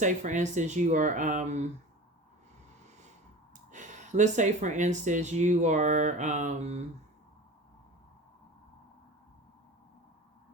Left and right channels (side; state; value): both; normal; correlation 0.36